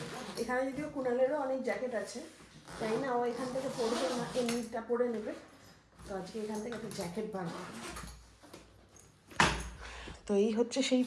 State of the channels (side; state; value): both; identical; correlation 1.00